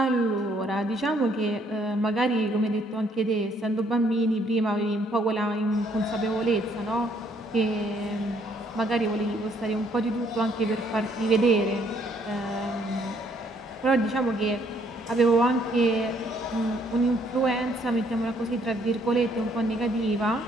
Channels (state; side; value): normal; both; correlation 0.67